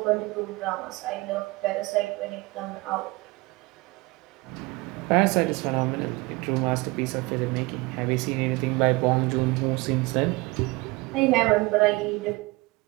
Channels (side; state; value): left; quieter; 23.4 dB